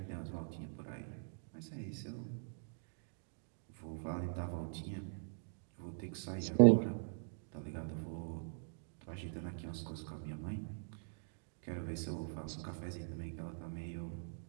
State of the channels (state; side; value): silent; left; digital silence